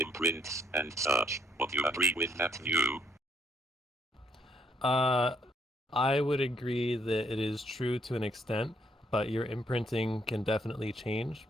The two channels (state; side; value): normal; both; correlation 0.70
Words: and such. Would you agree with that view? I would agree that it is true to an extent, but your imprinting can definitely change,